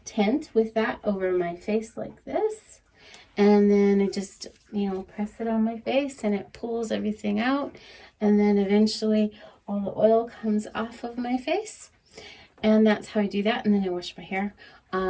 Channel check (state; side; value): identical; both; correlation 1.00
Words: tent with that over my face like this, and then I just, you know, press it on my face and it pulls everything out, and then eventually all the oil comes off of my face, and that's how I do that. And then I wash my hair